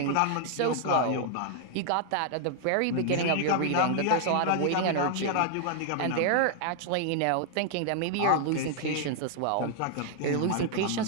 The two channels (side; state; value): both; different; correlation 0.00